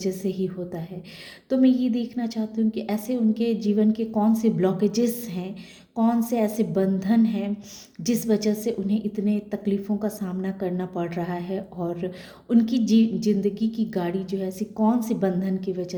से ही होता है। तो मैं ये देखना चाहती हूँ कि ऐसे उनके जीवन के कौन से ब्लॉकेजेस हैं, कौन से ऐसे बंधन हैं जिस वजह से उन्हें इतने तकलीफ़ों का सामना करना पड़ रहा है और उनकी ज़िंदगी की गाड़ी जो है ऐसी कौन से बंधन की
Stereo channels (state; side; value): identical; both; correlation 1.00